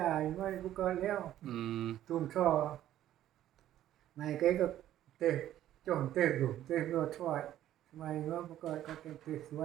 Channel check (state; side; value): quieter; left; 12.5 dB